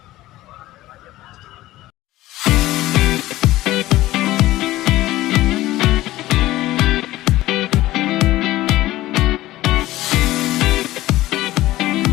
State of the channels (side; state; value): right; quieter; 16.4 dB